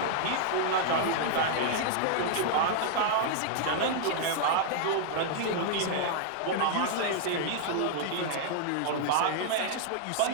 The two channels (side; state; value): both; different; correlation -0.01